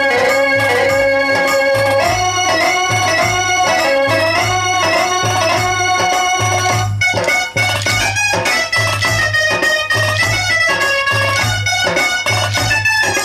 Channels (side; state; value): both; identical; correlation 1.00